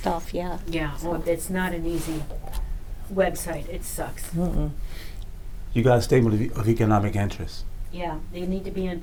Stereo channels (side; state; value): both; identical; correlation 1.00